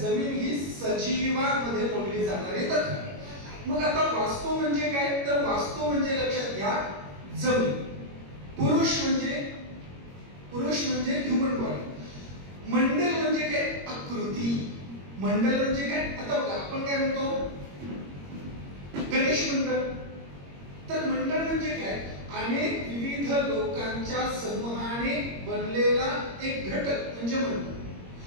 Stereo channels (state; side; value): late; left; 21 ms